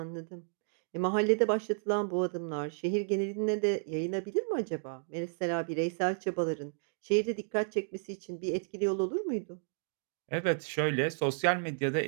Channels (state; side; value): silent; left; digital silence